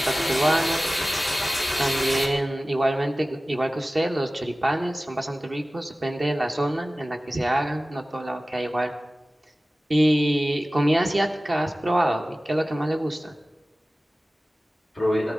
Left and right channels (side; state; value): both; normal; correlation 0.97